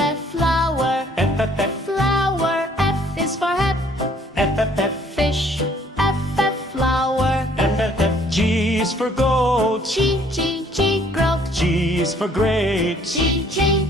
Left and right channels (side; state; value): both; normal; correlation 0.60